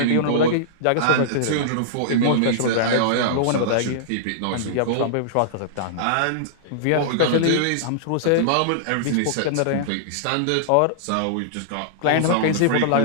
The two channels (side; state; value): both; different; correlation -0.02